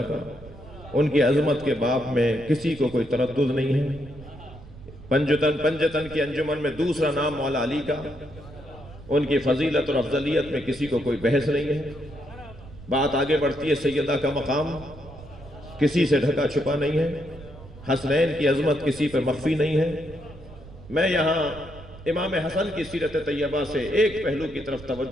کا، ان کی عظمت کے باب میں کسی کو کوئی تردد نہیں ہے۔ پنجتن کی انجمن میں دوسرا نام مولا علی کا، ان کی فضیلت اور افضلیت میں کسی کو کوئی بحث نہیں ہے۔ بات آگے بڑھتی ہے، سیدہ کا مقام کسی سے ڈھکا چھپا نہیں ہے، حسنین کی عظمت کسی پر مخفی نہیں ہے۔ میں یہاں امام حسن کی سیرت طیبہ سے ایک پہلو کی طرف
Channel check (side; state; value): right; noise; rumble, 18 dB below the sound